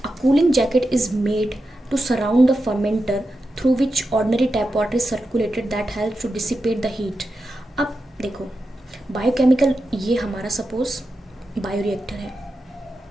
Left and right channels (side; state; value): both; normal; correlation 0.89